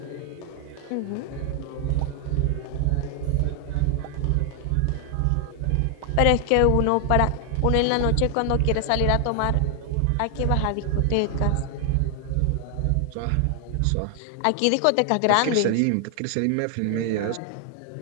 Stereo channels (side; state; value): both; different; correlation 0.00